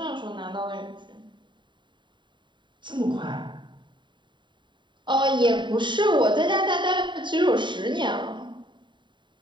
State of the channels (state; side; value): late; left; 0.23 ms